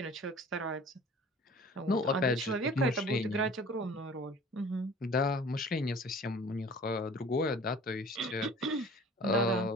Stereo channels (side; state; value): both; normal; correlation 0.46